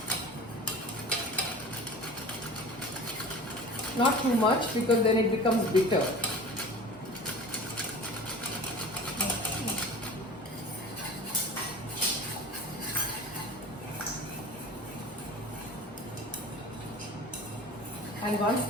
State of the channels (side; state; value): both; normal; correlation 0.38